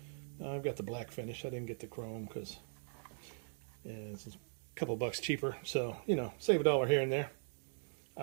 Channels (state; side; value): silent; left; digital silence